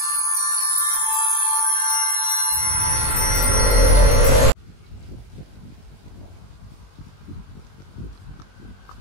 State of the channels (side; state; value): right; late; 21 ms